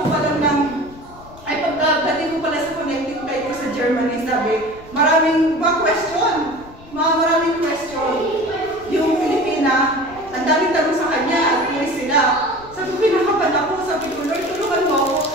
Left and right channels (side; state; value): left; noise; rumble, 21 dB below the sound